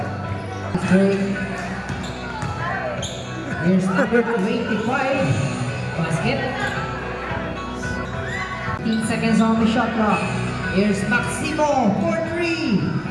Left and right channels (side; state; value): both; identical; correlation 1.00